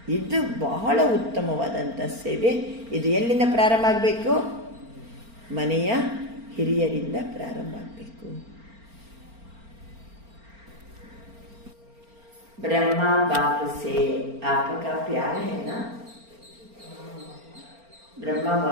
ಇದು ಬಹಳ ಉತ್ತಮವಾದಂಥ ಸೇವೆ. ಇದು ಎಲ್ಲಿಂದ ಪ್ರಾರಂಭ ಆಗಬೇಕು, ಮನೆಯ ಹಿರಿಯರಿಂದ ಪ್ರಾರಂಭ ಆಗಬೇಕು. ಬ್ರಹ್ಮ ಬಾಪ್ ಸೇ ಆಪಕಾ ಪ್ಯಾರ ಹೇನಾ, ಬ್ರಹ್ಮ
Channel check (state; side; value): late; left; 4.4 ms